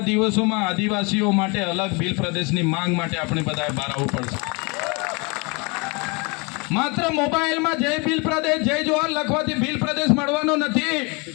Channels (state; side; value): quieter; right; 29.9 dB